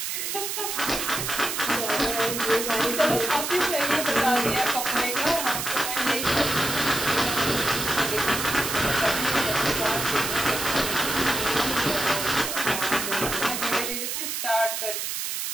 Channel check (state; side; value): noise; right; hiss, 3 dB below the sound